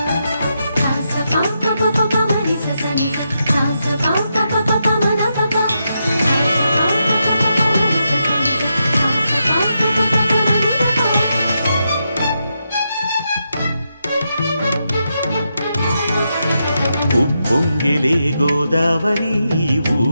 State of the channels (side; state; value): both; inverted; correlation -0.84